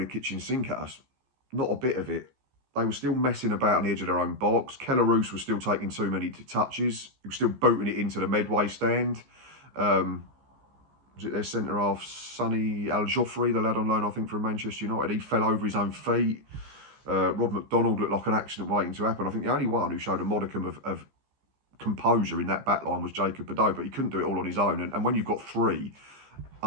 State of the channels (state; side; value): late; left; 15 ms